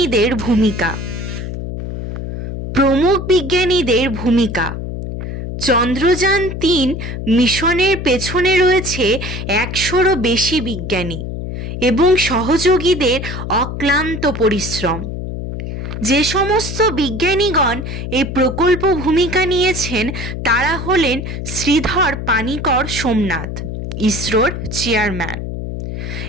ভূমিকা, চন্দ্রযান 3 মিশনের পেছনে রয়েছে 100-রও বেশি বিজ্ঞানী এবং সহযোগীদের অক্লান্ত পরিশ্রম। যে সমস্ত বিজ্ঞানীগণ এই প্রকল্প ভূমিকা নিয়েছেন তারা হলেন শ্রীধর পানিকর সোমনাথ, ইসরোর চেয়ারম্যান,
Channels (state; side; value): noise; left; hum, 6 dB below the sound